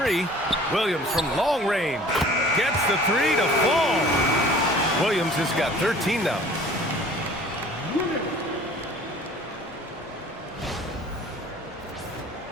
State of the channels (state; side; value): normal; both; correlation 0.48